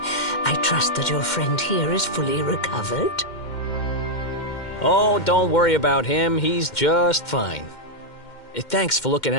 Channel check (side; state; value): right; late; 2.1 ms